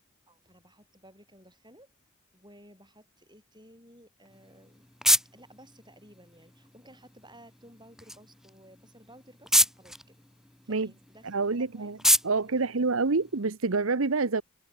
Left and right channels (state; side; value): normal; both; correlation 0.03